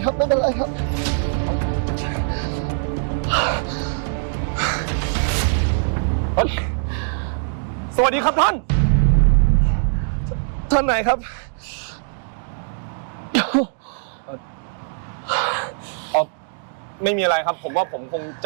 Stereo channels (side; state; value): left; silent; digital silence